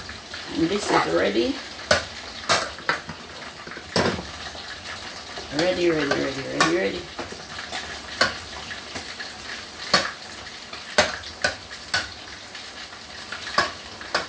And this is ready. Ready.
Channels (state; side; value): identical; both; correlation 1.00